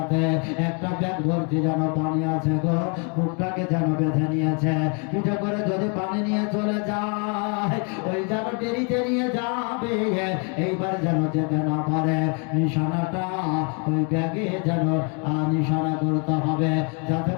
একটা ব্যাগ ভর্তি যেন পানি আছে গো, মুখটাকে যেন বেঁধে নিয়েছে, পিঠে করে যদি পানি নিয়ে চলে যায় ওই যেন দেরিতে নিয়ে যাবে, এইবার যেন যেতে না পারে। নিশানাটা ওই ব্যাগে যেন নিশানা করতে হবে যাতে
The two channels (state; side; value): quieter; right; 37.0 dB